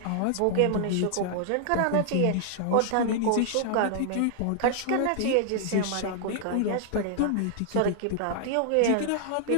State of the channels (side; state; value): both; different; correlation 0.00